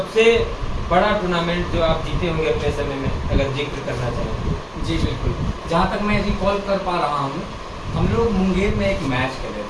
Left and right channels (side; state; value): both; identical; correlation 1.00